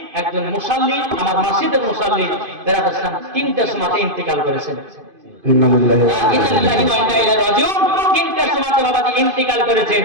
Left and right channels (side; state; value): left; late; 2.5 ms